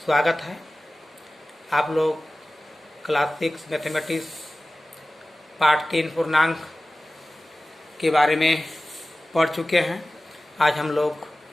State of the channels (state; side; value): normal; both; correlation 0.96